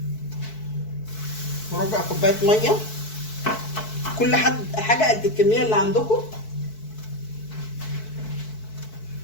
وربع كوبايه ميه. كل حاجه قد الكميه اللي عندكم.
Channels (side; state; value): right; late; 4.6 ms